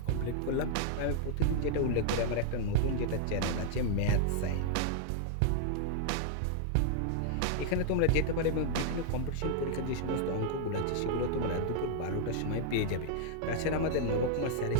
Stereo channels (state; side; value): different; both; correlation -0.01